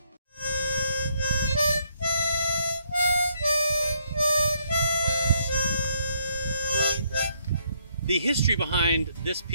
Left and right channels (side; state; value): both; inverted; correlation -0.72